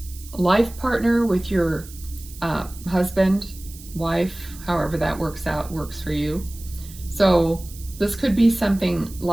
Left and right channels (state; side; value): noise; right; hiss, 18 dB below the sound